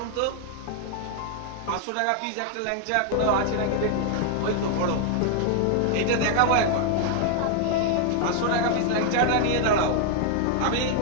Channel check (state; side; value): different; both; correlation 0.00